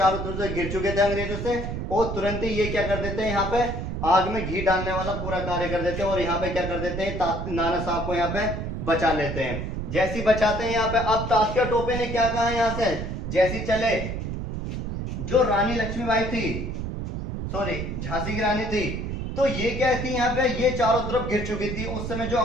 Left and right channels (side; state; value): right; noise; rumble, 4 dB below the sound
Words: तरफ से घिर चुके थे अंग्रेजों से, और तुरंत ही ये क्या कर देते हैं, यहाँ पे आग में घी डालने वाला पूरा कार्य कर देते हैं, और यहाँ पे क्या कर देते हैं, नाना साहब को यहाँ पे बचा लेते हैं। जैसी बचाते हैं यहाँ पे। अब तात्या टोपे ने क्या कहा यहाँ से, जैसी चले, जो रानी लक्ष्मीबाई थी, सॉरी झांसी की रानी थी, तो ये क्या थी यहाँ पे, ये चारों तरफ घिर चुकी थी। उस समय जो